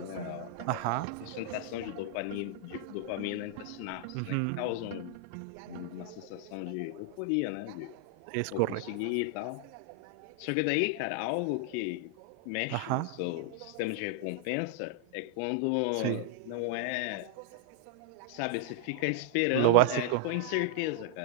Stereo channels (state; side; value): different; both; correlation -0.01